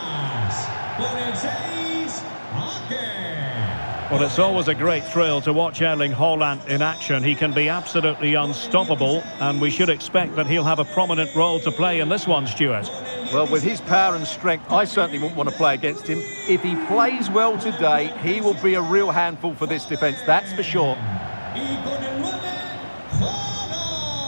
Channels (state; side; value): inverted; both; correlation -1.00